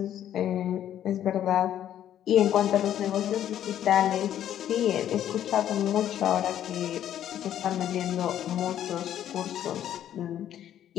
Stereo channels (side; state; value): right; quieter; 11.0 dB